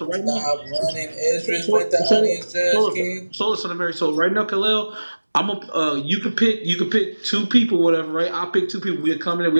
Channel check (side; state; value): both; inverted; correlation -1.00